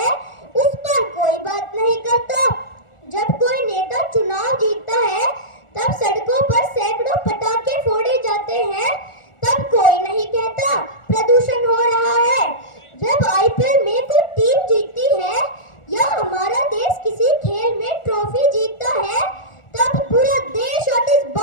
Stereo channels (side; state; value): right; late; 1.4 ms